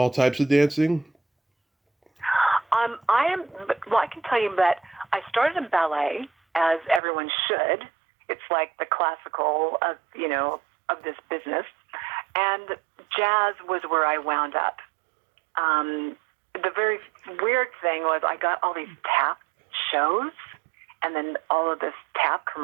types of dancing? I am. Well, I can tell you that I started in ballet, as everyone should. It's like the classical of of this business, and jazz was where I wound up. The very weird thing was I got all these tap shows, and then all of this tap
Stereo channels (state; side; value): drops out; left; at 7.0 s